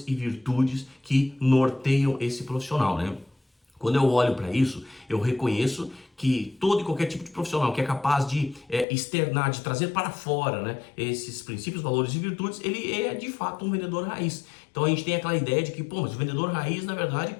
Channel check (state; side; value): drops out; right; at 8.8 s